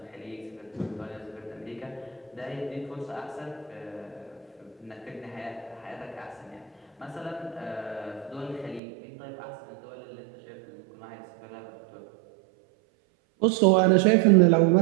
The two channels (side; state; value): left; drops out; at 8.8 s